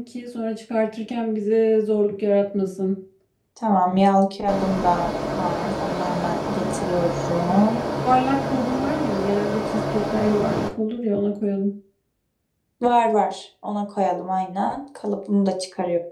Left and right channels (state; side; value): identical; both; correlation 1.00